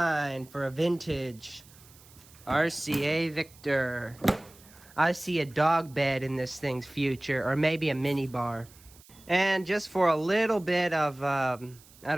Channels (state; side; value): noise; right; hiss, 24 dB below the sound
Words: for a vintage RCA Victor. I see a dog bed in this thing's future, or maybe a mini bar. And just for a little bit of, I